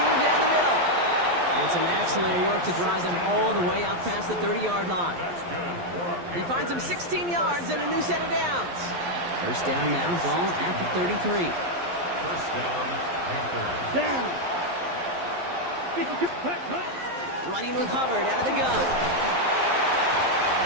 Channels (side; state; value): left; late; 11 ms